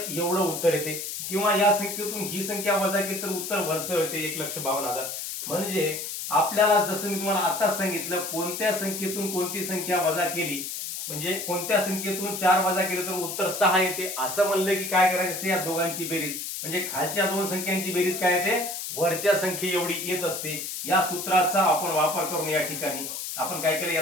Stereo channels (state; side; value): noise; left; hiss, 6 dB below the sound